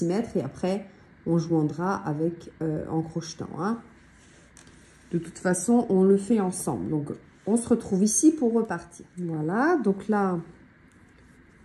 et après, on joindra avec en crochetant. Hein. De toute façon, on le fait ensemble. Donc, on se retrouve ici pour repartir. Voilà, donc là,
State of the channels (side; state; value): both; identical; correlation 1.00